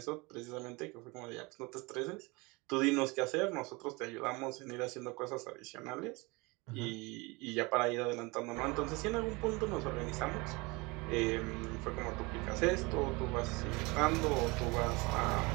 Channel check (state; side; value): quieter; left; 25.7 dB